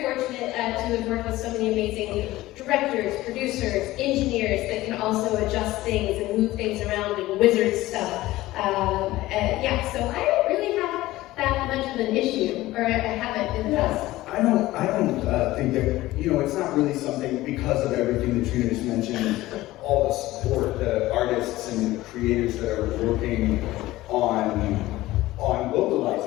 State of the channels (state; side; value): quieter; right; 17.2 dB